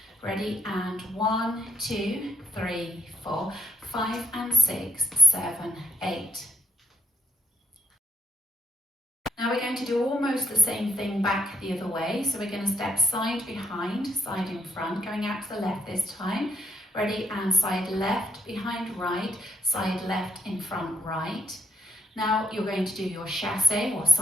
ready, and 1, 2, 3, 4, 5 and 6, 7, 8. Now we're going to do almost the same thing back the other way. So we're going to step side behind, side in front, going out to the left this time. Ready, and side left behind right, side left in front right. Now you're going to do your chassé or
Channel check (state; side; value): normal; both; correlation 0.71